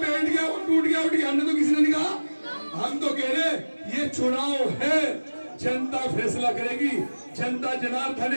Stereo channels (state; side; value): inverted; both; correlation -1.00